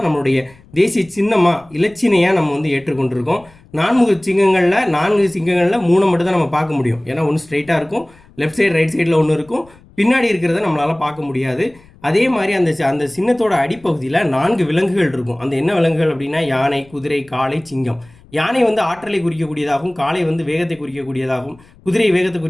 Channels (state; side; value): noise; left; rumble, 27 dB below the sound